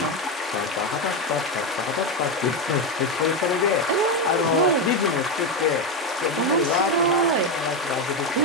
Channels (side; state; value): both; normal; correlation 0.10